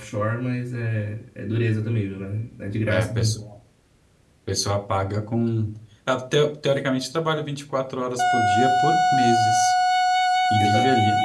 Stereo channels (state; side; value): identical; both; correlation 1.00